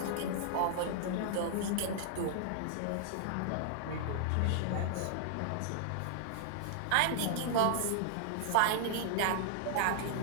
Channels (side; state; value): both; different; correlation -0.01